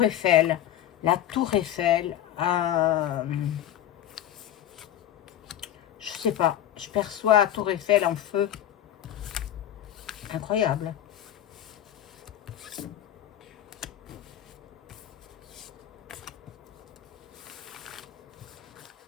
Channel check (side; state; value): right; quieter; 11.5 dB